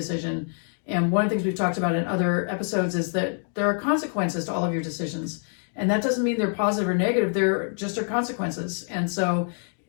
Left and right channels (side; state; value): right; silent; 59 dB below the other